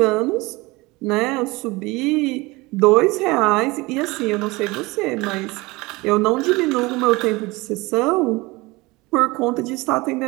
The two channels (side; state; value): left; quieter; 22.8 dB